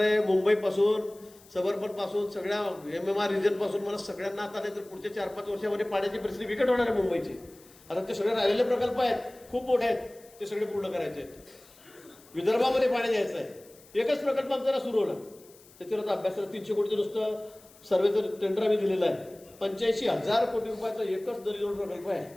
मुंबईपासून सबर्बनपासून सगळ्या MMR रिजनपासून मला सगळ्यांना आता नाही तर पुढच्या 4-5 वर्षामध्ये पाण्याची परिस्थिती बिकट होणार आहे मुंबईची. आता ते सगळे राहिलेले प्रकल्प आहेत, खूप मोठे आहेत, ते सगळे पूर्ण करायचे आहेत. विदर्भामध्ये पाणी द्यायचं आहे. एकच प्रकल्प आमचा सुरू होणार, त्याच्यावर अभ्यासाला 300 कोटीचं नुसतं सर्वेचं टेंडर आम्ही दिलेलं आहे. 85,000 कोटी रुपयाचा एकच नदीजोड प्रकल्प आहे.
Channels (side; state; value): left; noise; hiss, 25 dB below the sound